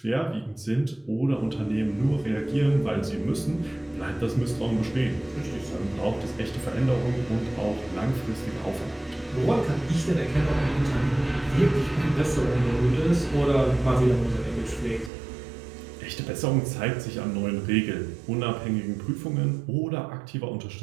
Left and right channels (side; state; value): left; drops out; at 15.1 s